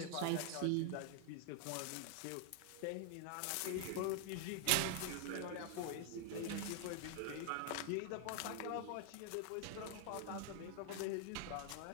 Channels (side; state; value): both; different; correlation 0.00